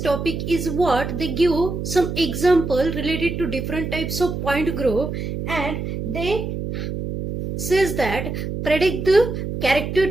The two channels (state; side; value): noise; right; hum, 5 dB below the sound